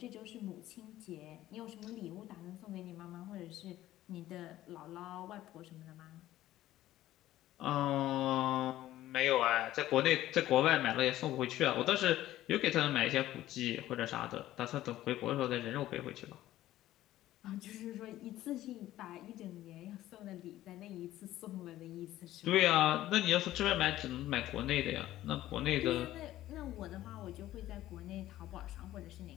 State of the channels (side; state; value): right; quieter; 14.4 dB